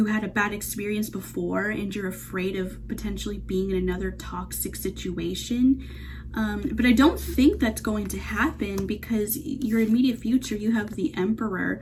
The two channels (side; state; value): both; identical; correlation 1.00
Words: had a bad experience before and you're afraid of potentially being in another toxic situation. But I don't think that's going to happen, because your immediate future, you have the Emperor.